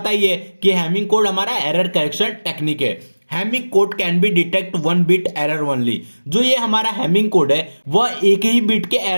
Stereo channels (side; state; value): both; inverted; correlation -1.00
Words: ही है कि हैमिंग कोड हमारा एरर करेक्शन टेक्निक है। Hamming code can be detect one bit error only. जो ये हमारा हैमिंग कोड है वह एक ही बिट के